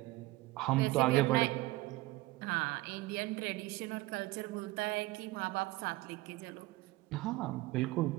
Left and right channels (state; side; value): quieter; left; 19.8 dB